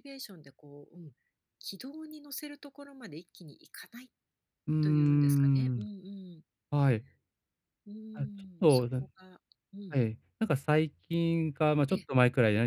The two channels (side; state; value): both; identical; correlation 1.00